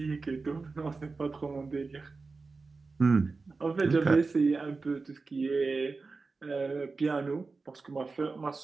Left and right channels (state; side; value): quieter; left; 4.1 dB